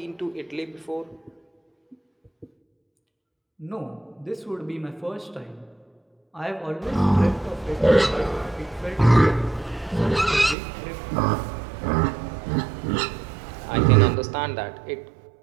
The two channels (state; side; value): drops out; left; at 10.6 s